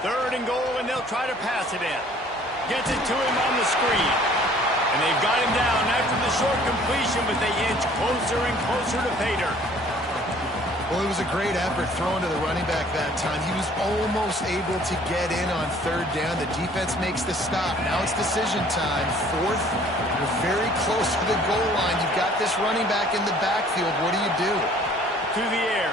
3rd and goal, and they'll try to pass it in. Gets it to him on the screen. And they've got him down after the short completion, but they inch closer and closer to pay dirt. Well, it was a great effort throwing to the running back that time. He was almost able to get in on 3rd down. The defense makes the stop. Now it's decision time. 4th, we're very close to the goal line. You've got this running back in the backfield. What do you do? To the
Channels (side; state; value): both; normal; correlation 0.55